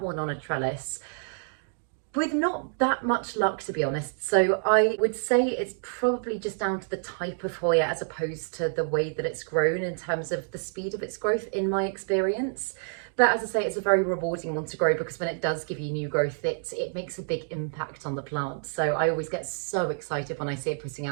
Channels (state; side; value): silent; left; digital silence